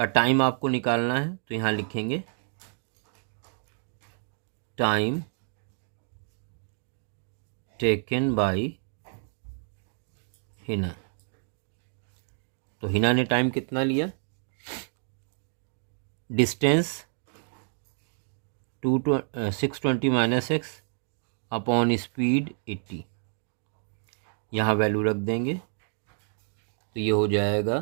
टाइम आपको निकालना है, तो यहाँ लिखेंगे टाइम टेकन बाय हिना। तो हिना ने टाइम कितना लिया, distance 620 minus x upon speed 80, यहाँ वैल्यू रख देंगे तो ये हो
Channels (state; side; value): silent; left; digital silence